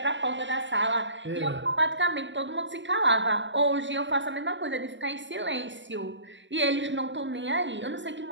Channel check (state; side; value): late; left; 0.54 ms